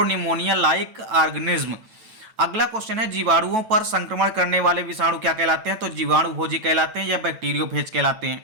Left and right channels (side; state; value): left; late; 9.1 ms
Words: लाइक ऑर्गेनिज्म। अगला क्वेश्चन है जीवाणुओं पर संक्रमण करने वाले विषाणु क्या कहलाते हैं? तो जीवाणु भोजी कहलाते हैं या बैक्टीरियोफेज कहलाते हैं।